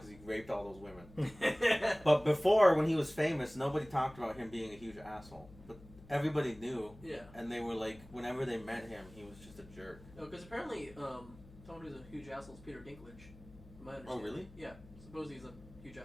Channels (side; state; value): left; noise; hum, 20 dB below the sound